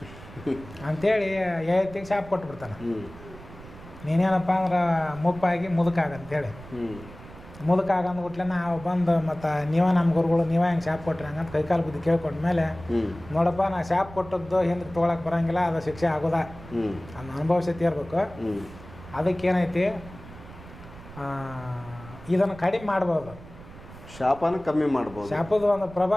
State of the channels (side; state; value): right; noise; rumble, 17 dB below the sound